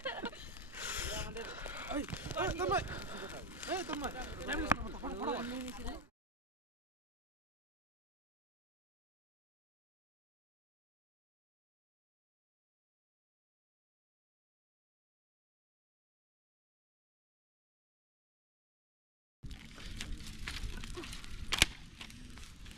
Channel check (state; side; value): normal; both; correlation 0.30